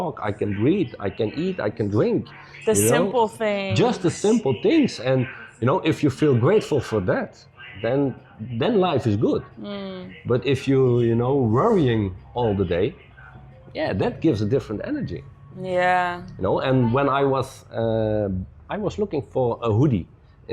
I can breathe, I can eat, I can drink. The you know? simple things. Just the simple things. And, you know, if you feel grateful for that, then life is good. But if you know, worrying all the day, yeah, that gives a different energy. Yeah. You know, and when I was looking for a hoodie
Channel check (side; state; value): both; identical; correlation 1.00